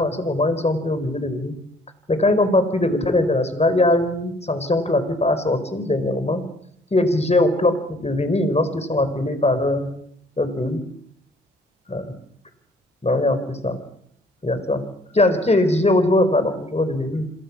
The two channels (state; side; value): normal; both; correlation 0.59